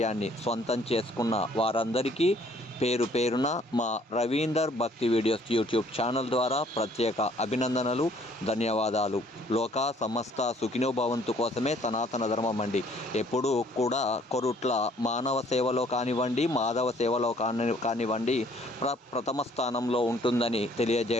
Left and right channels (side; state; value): both; normal; correlation 0.60